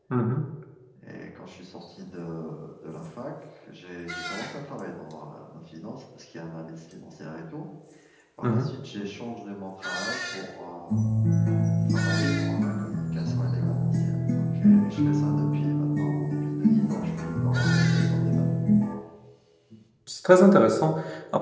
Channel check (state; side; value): identical; both; correlation 1.00